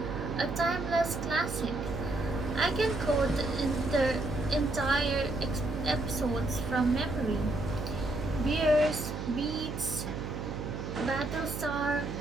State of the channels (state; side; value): noise; right; hum, 6 dB below the sound